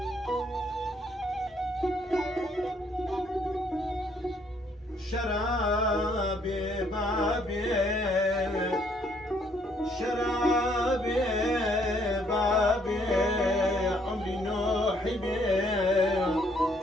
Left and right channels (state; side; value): normal; both; correlation 0.67